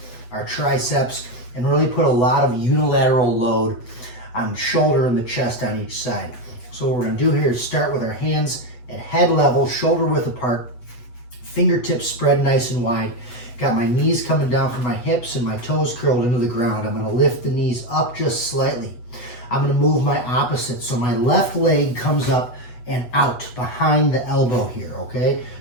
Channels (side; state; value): right; late; 8.2 ms